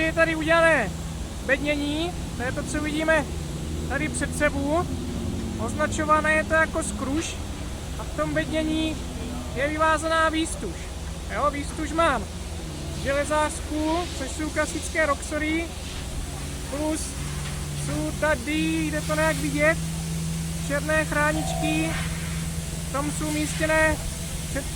je tady udělané bednění, to je to, co vidíme tady před sebou. Označované je to jako skruš a v tom bednění je vyvázaná výstuž. Jo, výstuž mám železářskou, což jsou klasické roxory, plus jsou tady, jde to nějak vidět, černé chráničky, v tom jsou umístěné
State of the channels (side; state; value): both; identical; correlation 1.00